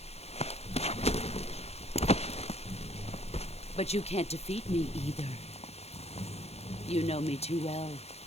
But you can't defeat me either. You know me too well.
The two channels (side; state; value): right; late; 0.30 ms